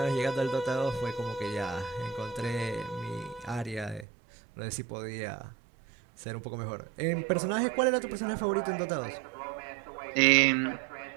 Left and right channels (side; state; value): left; drops out; at 4.0 s